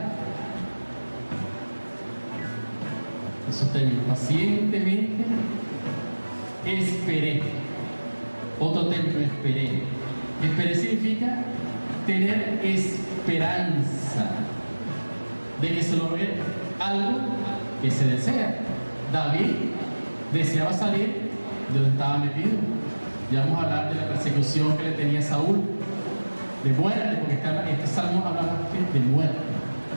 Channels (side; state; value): both; inverted; correlation -1.00